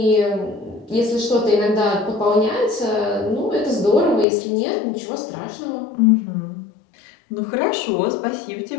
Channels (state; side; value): drops out; right; at 4.2 s